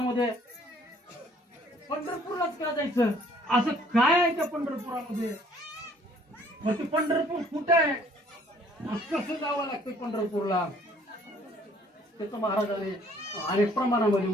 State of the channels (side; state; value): both; normal; correlation 0.59